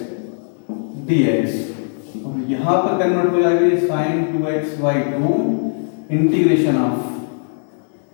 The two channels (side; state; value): right; silent; digital silence